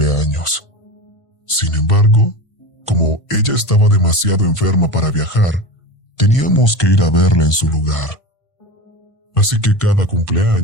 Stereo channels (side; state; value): right; late; 1.5 ms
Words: Sin embargo, como ella estaba demasiado enferma para viajar, teníamos que ir a verla en su lugar. Así que cada